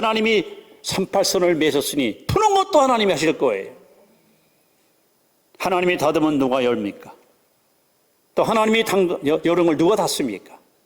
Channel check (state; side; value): identical; both; correlation 1.00